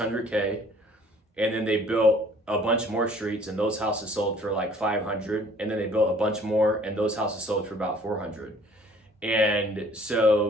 And then they built a bunch more streets, and those houses sold for like 500. And then they built a bunch more, and those houses sold for about 400. And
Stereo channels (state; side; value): normal; both; correlation 0.54